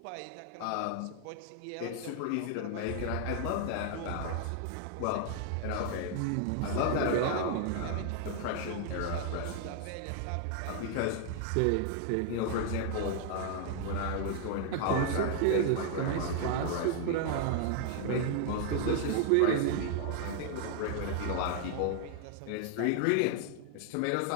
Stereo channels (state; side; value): different; both; correlation 0.00